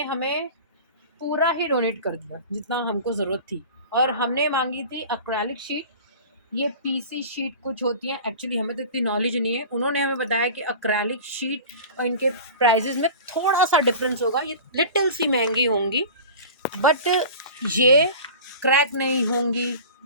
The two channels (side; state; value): both; inverted; correlation -0.37